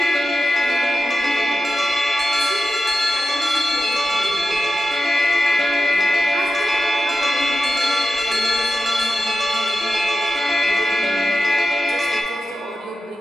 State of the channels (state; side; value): normal; both; correlation 0.89